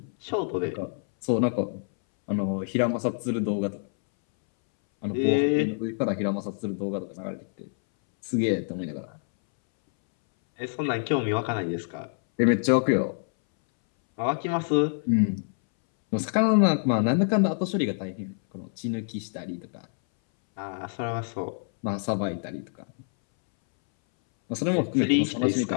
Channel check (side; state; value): right; silent; 60 dB below the other